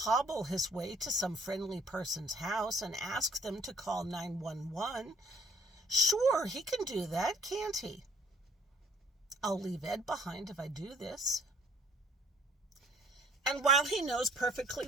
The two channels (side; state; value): both; normal; correlation 0.58